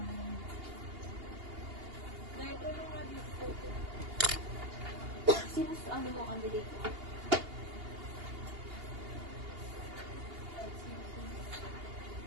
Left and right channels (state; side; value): late; left; 2.8 ms